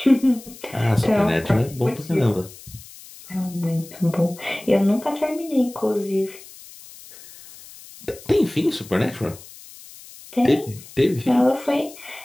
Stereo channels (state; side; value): noise; left; hiss, 19 dB below the sound